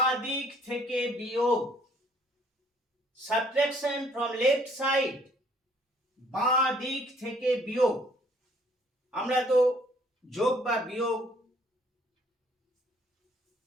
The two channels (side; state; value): both; normal; correlation 0.61